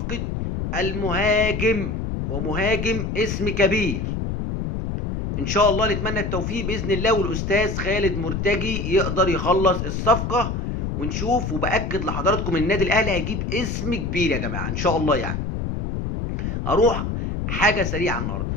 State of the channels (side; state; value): left; noise; rumble, 3 dB below the sound